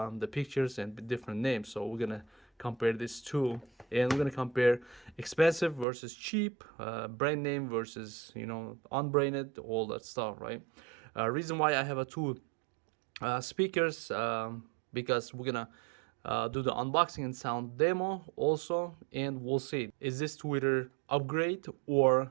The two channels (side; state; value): left; drops out; at 5.9 s